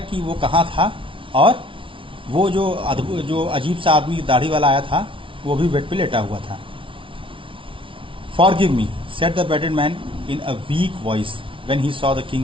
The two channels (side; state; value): left; late; 0.25 ms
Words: वो कहाँ था और वो जो अजीब सा आदमी दाढ़ी वाला आया था वो भी बेड पे लेटा हुआ था। Forgive me, said the bearded man in a weak voice when he saw the king